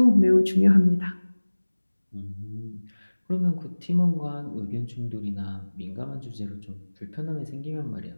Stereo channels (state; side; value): inverted; both; correlation -1.00